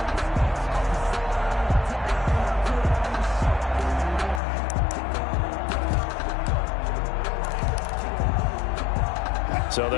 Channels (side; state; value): right; drops out; at 4.4 s